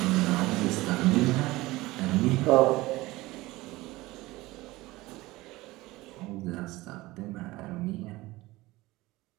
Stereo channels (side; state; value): left; quieter; 19.6 dB